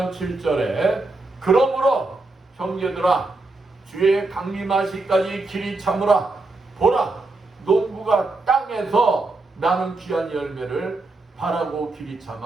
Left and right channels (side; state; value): left; quieter; 3.2 dB